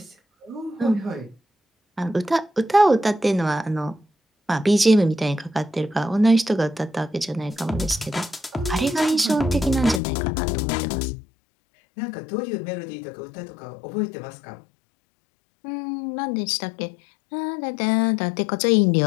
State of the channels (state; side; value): drops out; right; at 10.0 s